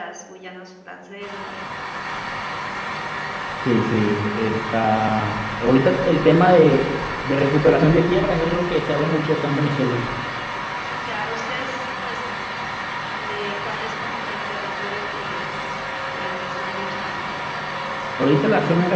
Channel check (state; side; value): identical; both; correlation 1.00